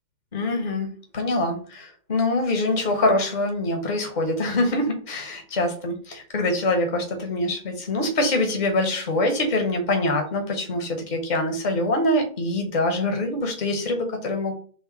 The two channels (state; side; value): late; left; 2.1 ms